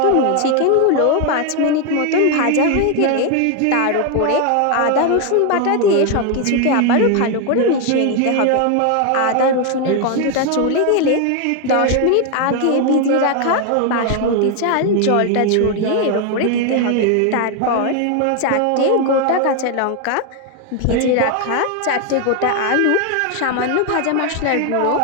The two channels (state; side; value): different; both; correlation 0.01